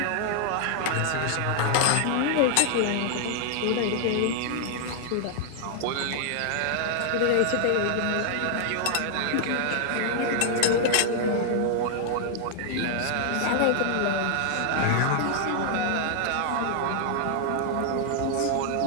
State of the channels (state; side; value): different; both; correlation 0.00